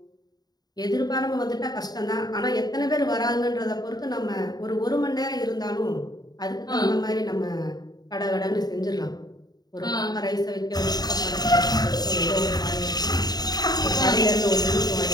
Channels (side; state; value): right; late; 0.19 ms